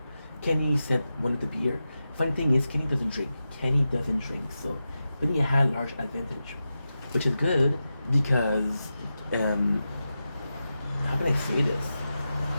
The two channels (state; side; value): inverted; both; correlation -0.91